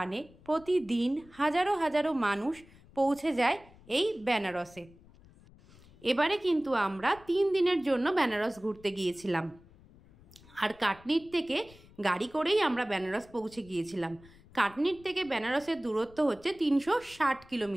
প্রতিদিন হাজারো হাজারো মানুষ পৌঁছে যায় এই বেনারসে। এবারে কিন্তু আমরা 3 দিনের জন্য বেনারস ঘুরতে গিয়েছিলাম, আর কাটনির থেকে গাড়ি করেই আমরা বেনারস পৌঁছে গিয়েছিলাম। কাটনির থেকে বেনারসের দূরত্ব হচ্ছে 360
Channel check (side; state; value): left; noise; rumble, 24 dB below the sound